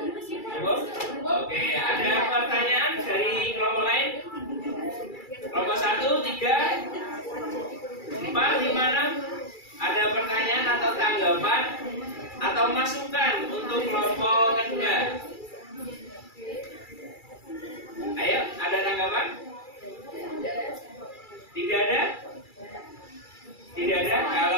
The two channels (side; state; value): right; late; 2.3 ms